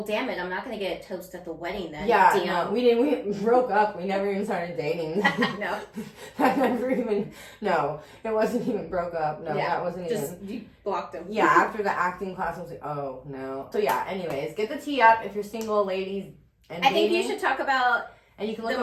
damn it, I'm not gonna get a toast at the wedding then. Yeah, no, we broke up. We never even started dating. No. No, it wasn't even broke up. No, that wasn't just even. You blocked him. Yeah, after the acting class, I was like, oh no. So yeah, anyways, get the tea up if you're single, ladies. And I think you should talk about and you can look the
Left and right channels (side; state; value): both; identical; correlation 1.00